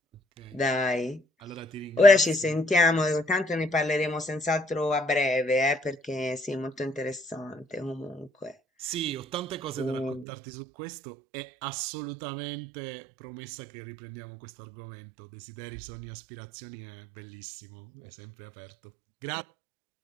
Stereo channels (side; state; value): left; drops out; at 10.2 s